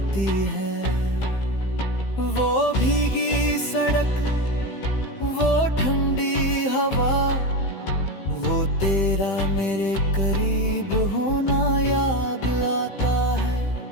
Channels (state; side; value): late; right; 15 ms